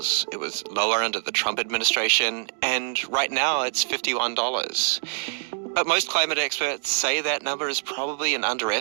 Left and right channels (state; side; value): silent; left; digital silence